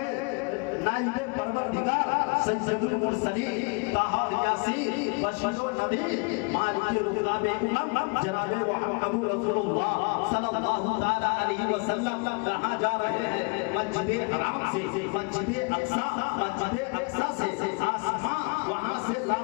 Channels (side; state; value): right; quieter; 32.3 dB